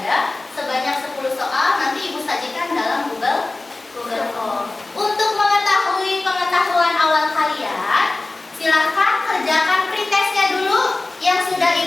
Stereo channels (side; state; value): right; quieter; 3.1 dB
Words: sebanyak 10 soal, nanti Ibu sajikan dalam Google Form. Untuk mengetahui pengetahuan awal kalian, silahkan kerjakan pretestnya dulu yang sudah